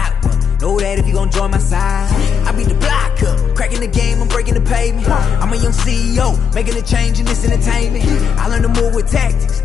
one, know that if you gon' join my side. I beat the block up, cracking the game, I'm breaking the pavement. I'm a young CEO, making a change in this entertainment. I learned to move with tactics,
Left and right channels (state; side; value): quieter; right; 6.8 dB